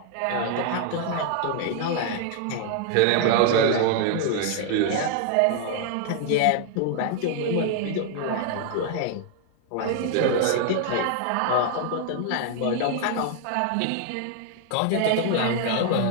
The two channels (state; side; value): different; both; correlation 0.00